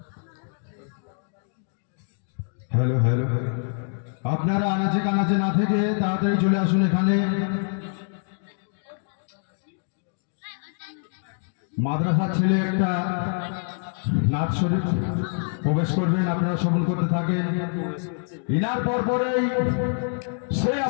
হ্যালো হ্যালো, আপনারা আনাচে কানাচে না থেকে তাড়াতাড়ি চলে আসুন এখানে। মাদ্রাসার ছেলে একটা নাচ শরীফ প্রবেশ করবেন, আপনারা শ্রবণ করতে থাকেন। ইনার পরপরেই সে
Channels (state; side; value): silent; right; 61 dB below the other